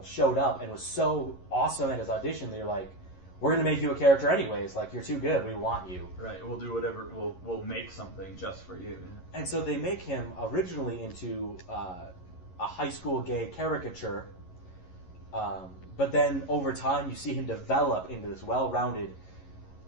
showed up and was so awesome at his audition, they were like, we're going to make you a character anyways. Like, you're too good. We want you. Right. We'll do whatever. We'll make something just for you. And so they make him originally into a high school gay caricature. But then over time, you see him develop into this well-rounded,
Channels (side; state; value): right; late; 11 ms